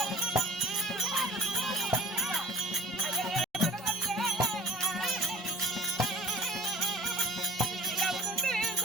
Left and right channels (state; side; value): normal; both; correlation 0.45